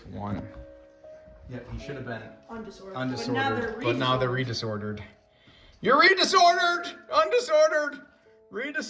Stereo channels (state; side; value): identical; both; correlation 1.00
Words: 1. Yep, he should have been undisordered. But now they're redisordered. You're redisordered! Undisordered!